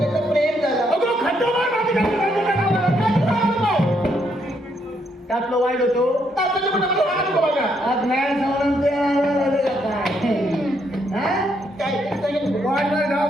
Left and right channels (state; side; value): normal; both; correlation 0.74